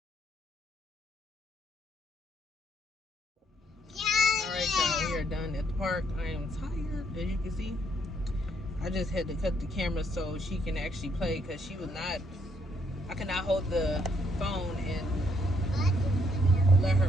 Alright y'all, we are done at the park. I am tired, as you can see. I just had to cut the camera so she can actually play, because she was not, I could not hold the phone and let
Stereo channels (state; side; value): normal; both; correlation 0.71